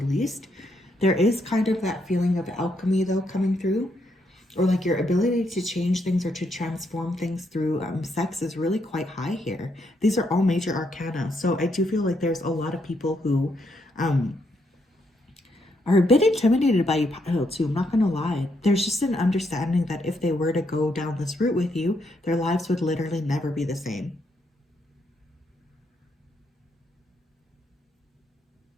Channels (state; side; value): normal; both; correlation 0.76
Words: least. There is kind of that feeling of alchemy though coming through, or like your ability to change things or to transform things through sex is really quite high here. These are all major arcana. So I do feel like there's a lot of people who are a bit intimidated by you, Pile, too. I'm not going to lie. There's just an understanding that if they were to go down this route with you, their lives would literally never be the same.